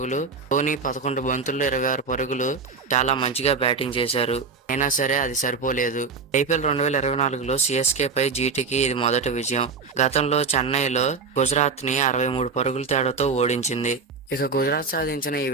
ధోని 11 బంతుల్లో 26 పరుగులు చాలా మంచిగా బ్యాటింగ్ చేశారు. అయినా సరే అది సరిపోలేదు. ఐపీఎల్ 2024లో సిఎస్కేపై జీటీకి ఇది మొదటి విజయం. గతంలో చెన్నైలో గుజరాత్ని 63 పరుగుల తేడాతో ఓడించింది. ఇక గుజరాత్ సాధించిన ఈ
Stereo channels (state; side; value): quieter; left; 4.8 dB